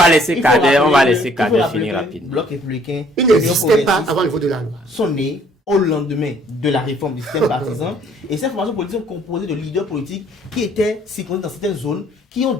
va laisser Kader finir rapidement. Le bloc républicain, ils n'existaient pas avant le vote de la loi. Sont nés au lendemain de la réforme du système partisan. Et ces formations politiques sont composées de leaders politiques qui étaient circonscrits dans certaines zones, qui ont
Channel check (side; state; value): both; normal; correlation 0.61